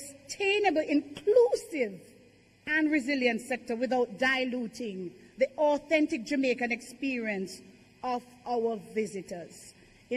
inclusive, and resilient sector without diluting the authentic Jamaican experience of our visitors.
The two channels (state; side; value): identical; both; correlation 1.00